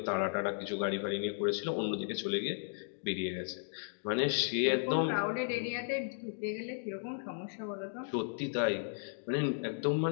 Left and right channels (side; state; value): right; silent; digital silence